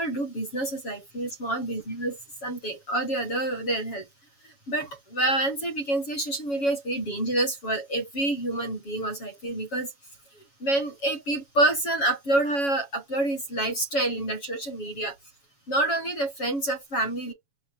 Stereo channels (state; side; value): late; right; 7.2 ms